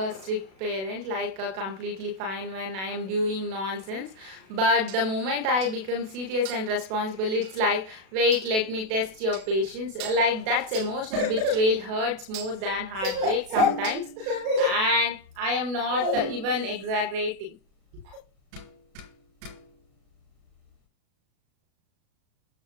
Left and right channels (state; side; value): late; left; 37 ms